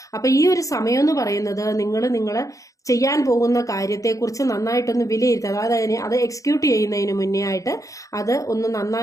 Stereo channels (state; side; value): late; right; 0.16 ms